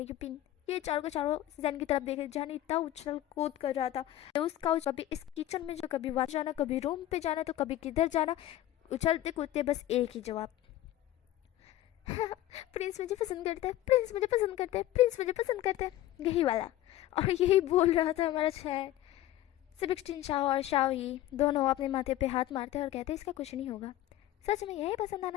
यूपिन ये चारों के चारों जैन की तरफ देख रहे। जैन इतना उछल कूद कर रहा था, उसका कभी इस किचन में जो, कभी वहाँ जाना, कभी रूम पे जाना, तो कभी किधर जाना, उछलते कूदते बस एक ही जवाब, प्रिंस मुझे पसंद करता है, प्रिंस मुझे पसंद करता है, प्रिंस मुझे पसंद करता है, यही वाला। और यही बोल रहा था हमारा चैन। सेबेस्टियन शाओ और शाओ ही दोनों अपने माथे पे हाथ मारते और कहते इसका कुछ नहीं होगा, सच में यही पसंद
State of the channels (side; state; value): right; quieter; 14.2 dB